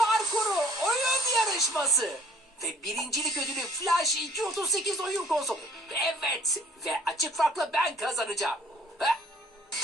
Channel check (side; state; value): both; normal; correlation 0.57